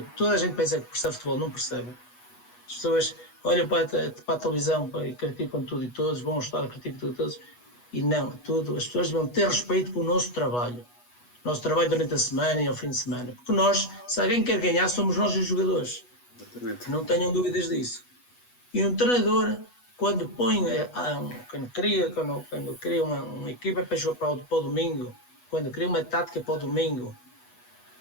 toda a gente pensa que percebe futebol, não percebe. As pessoas olham para a televisão e criticam tudo e todos, vão ao estádio, criticam tudo e todos, e não, as pessoas vão ter respeito pelo nosso trabalho durante a semana e ao fim de semana, porque nós, se alguém quer ganhar, somos nós os jogadores. Exatamente. Não tenham dúvidas disso. E um treinador, quando põe, quando cria uma equipa para jogar para o domingo, quando cria uma tática para o domingo,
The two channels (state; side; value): late; right; 8.2 ms